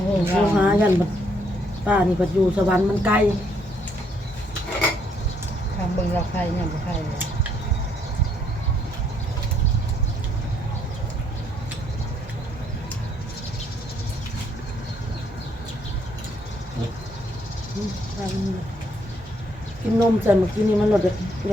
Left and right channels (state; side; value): normal; both; correlation 0.70